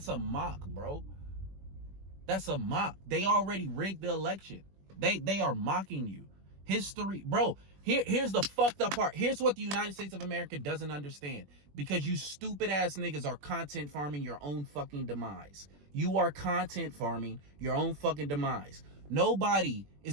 a mock, bro. That's a mock. They already rigged the election. They are mocking you. History, bro. Here's the fucked up part. Here's what the United States of America doesn't understand. Because you stupid ass niggas are content farming your own fucking demise. You are content farming your own fucking demise. Nobody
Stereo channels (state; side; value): late; left; 21 ms